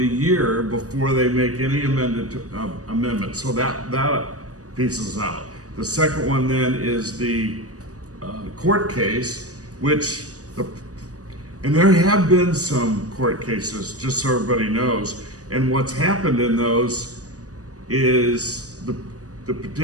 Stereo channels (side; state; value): left; late; 0.66 ms